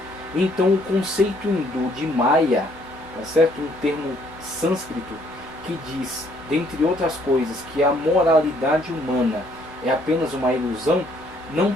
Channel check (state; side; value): normal; both; correlation 0.65